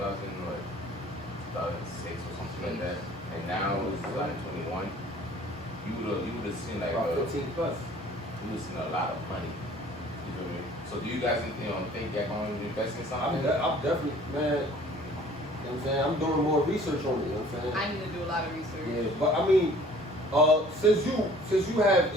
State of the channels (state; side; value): normal; both; correlation 0.52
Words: or something like that. And now it's 2021. you would have seen like About 15 plus. you would have seen a lot of money. You feel me? So do you guys think you're going to invest in something? I'm definitely, man. You know what I'm saying? I'm doing more research on it. You know what I'm saying? I need to do a lot of research. Yeah, but I mean, since you have